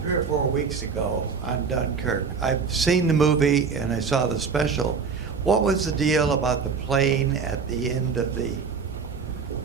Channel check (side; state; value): left; quieter; 5.6 dB